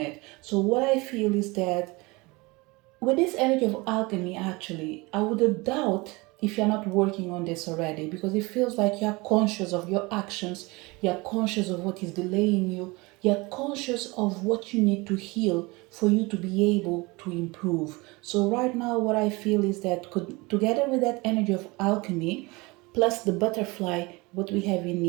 it. So what I feel is that with this energy of alchemy, actually, I would doubt if you're not working on this already, because it feels like you're conscious of your actions, you're conscious of what is delaying you, you're conscious of what you need to heal for you to be able to improve. So right now, what I feel is that together with that energy of alchemy, plus the butterfly, what we have in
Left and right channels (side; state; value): left; quieter; 24.5 dB